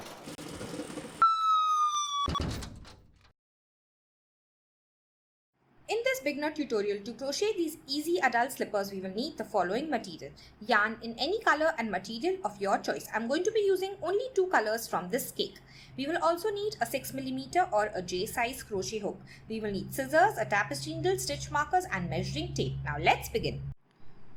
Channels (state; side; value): identical; both; correlation 1.00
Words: In this beginner tutorial, to crochet these easy adult slippers, we will need the following material. Yarn in any color and material of your choice. I'm going to be using only 2 colors from this cake. We will also need a 6mm or a J size crochet hook. We will need scissors, a tapestry needle, stitch markers and measuring tape. Now let's begin.